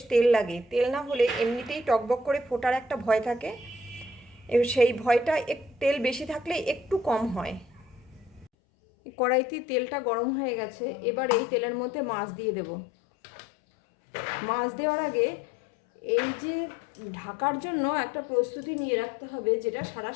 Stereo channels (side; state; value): right; drops out; at 8.5 s